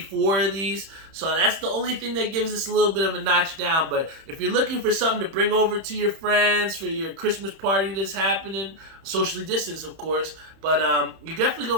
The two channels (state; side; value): late; left; 31 ms